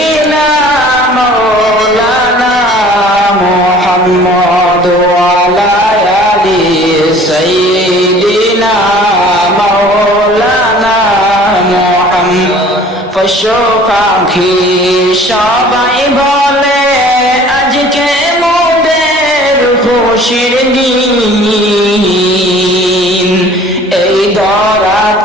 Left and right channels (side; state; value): both; normal; correlation 0.49